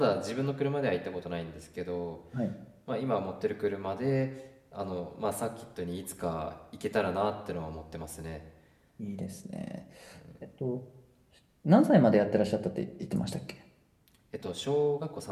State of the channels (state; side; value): identical; both; correlation 1.00